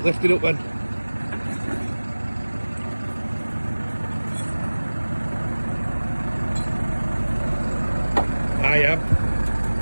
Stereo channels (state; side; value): inverted; both; correlation -1.00